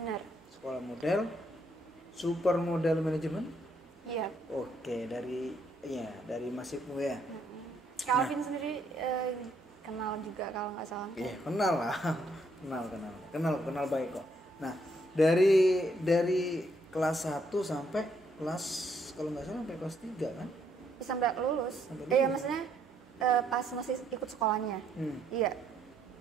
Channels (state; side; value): normal; both; correlation 0.72